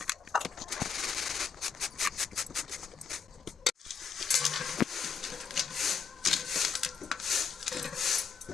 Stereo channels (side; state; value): right; quieter; 6.1 dB